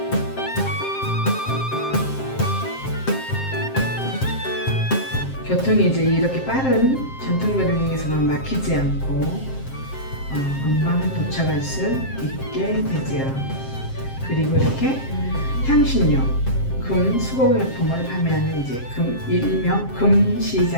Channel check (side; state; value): right; late; 7.6 ms